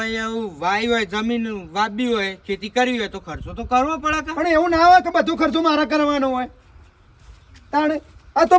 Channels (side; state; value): both; identical; correlation 1.00